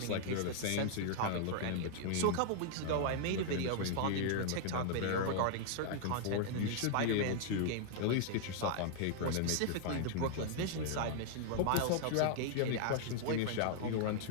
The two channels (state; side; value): different; both; correlation -0.01